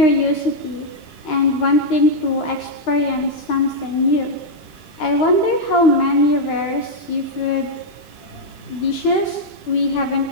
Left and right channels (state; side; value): late; right; 2.9 ms